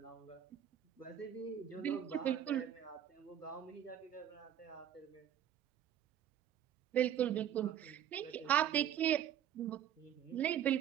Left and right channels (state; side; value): quieter; left; 10.0 dB